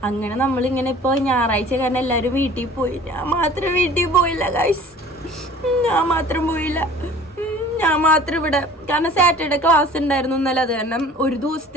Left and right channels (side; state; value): both; normal; correlation 0.47